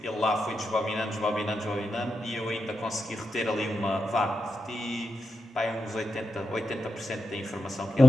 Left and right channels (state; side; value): normal; both; correlation 0.87